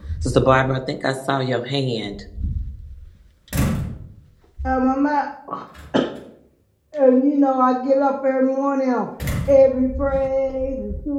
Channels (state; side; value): identical; both; correlation 1.00